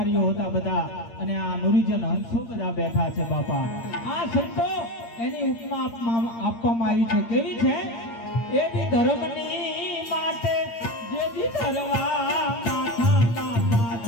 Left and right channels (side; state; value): right; late; 8.7 ms